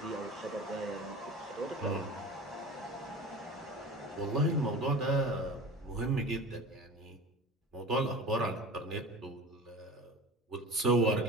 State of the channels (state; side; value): normal; both; correlation 0.36